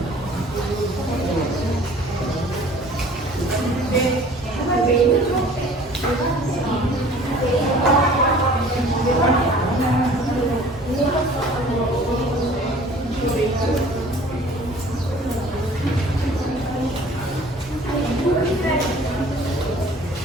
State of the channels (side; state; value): both; normal; correlation 0.49